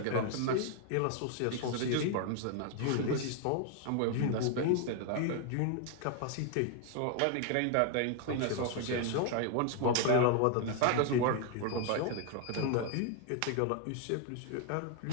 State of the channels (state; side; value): different; both; correlation 0.00